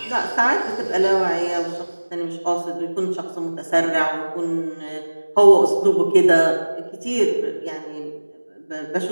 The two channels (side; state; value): both; inverted; correlation -1.00